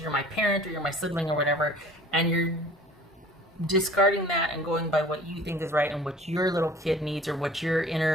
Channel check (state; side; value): normal; both; correlation 0.47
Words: my parent or you're my sibling or whatever. And you're discarding that and going by what you think is right and what your little kid needs or what your